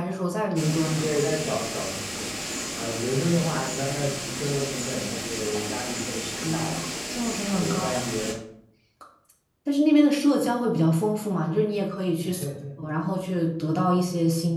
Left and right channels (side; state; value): both; identical; correlation 1.00